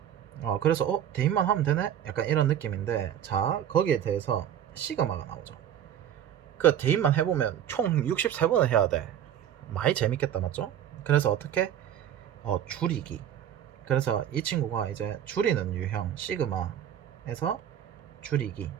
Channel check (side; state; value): left; quieter; 10.1 dB